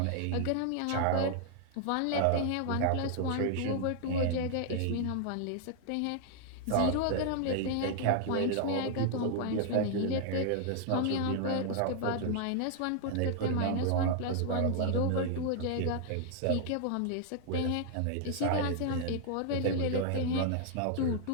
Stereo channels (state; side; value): different; both; correlation 0.00